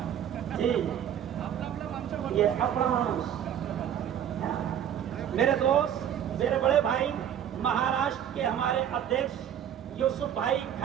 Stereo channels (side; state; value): left; quieter; 9.7 dB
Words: جی، یہ اپنا میرے دوست، میرے بڑے بھائی مہاراشٹر کے ہمارے ادھیکش یوسف بھائی